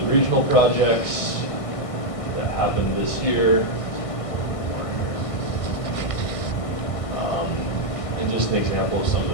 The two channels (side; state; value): right; late; 1.6 ms